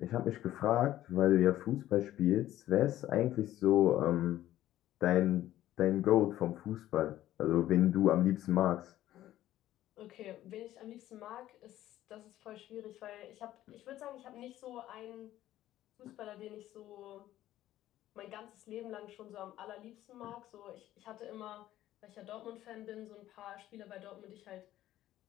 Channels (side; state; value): right; quieter; 13.7 dB